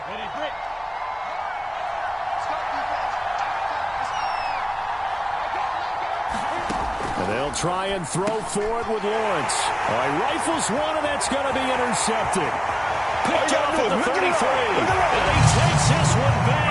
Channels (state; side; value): identical; both; correlation 1.00